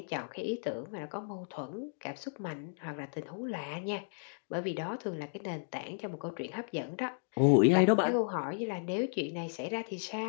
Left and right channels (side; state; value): right; silent; digital silence